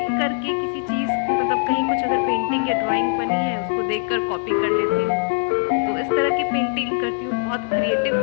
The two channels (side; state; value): right; silent; 65 dB below the other